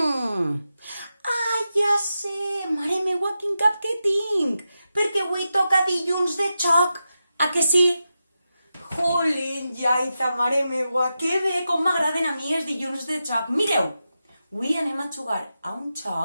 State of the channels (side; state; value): both; inverted; correlation -0.90